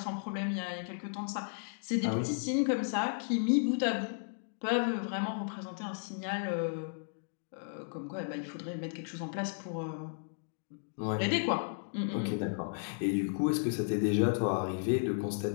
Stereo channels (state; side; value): silent; right; digital silence